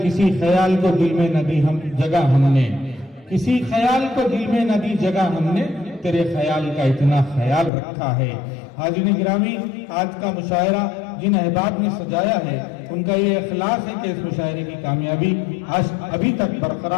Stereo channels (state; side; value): drops out; right; at 7.7 s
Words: ख्याल को दिल में न दी हम जगह हमने, किसी ख्याल को दिल में न दी जगह हमने, तेरे ख्याल का इतना ख्याल रखा है। हाज़िरीन गिरामी, आज का मुशायरा जिन अहबाब ने सजाया है उनका ये इखलास है कि इस मुशायरे की कामयाबी आज अभी तक